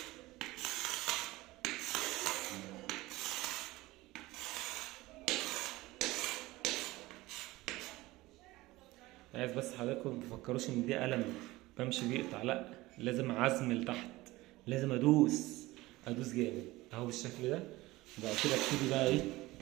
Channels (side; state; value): left; quieter; 19.3 dB